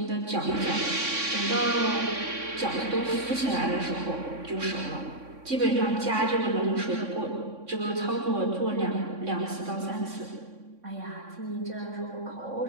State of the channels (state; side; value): late; left; 3.6 ms